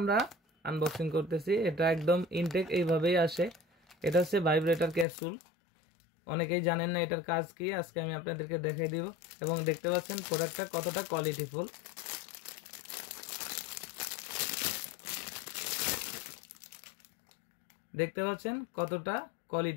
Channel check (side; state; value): right; drops out; at 5.1 s